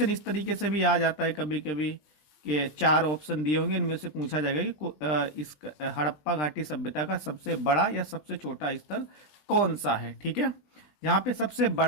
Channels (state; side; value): late; right; 20 ms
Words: इस तरीके से भी आ जाता है कभी कभी कि 4 ऑप्शन दिए होंगे, इनमें से पूछा जाएगा कि इस हड़प्पा घाटी सभ्यता का सबसे बड़ा या सबसे छोटा स्थल कौन सा है। ठीक है, जहाँ पे सबसे